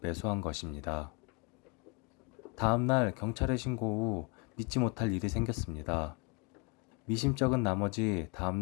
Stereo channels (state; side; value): quieter; right; 31.7 dB